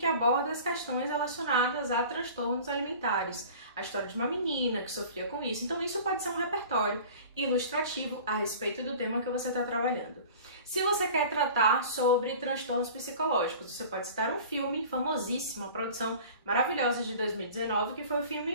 aborda as questões relacionadas a transtornos alimentares, a história de uma menina que sofria com isso. Então isso pode ser um repertório ilustrativo a respeito do tema que você está trabalhando. Se você quer tratar sobre transtornos psicológicos, você pode citar um filme famosíssimo, uma produção maravilhosa de 2019, que foi o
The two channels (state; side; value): inverted; both; correlation -0.42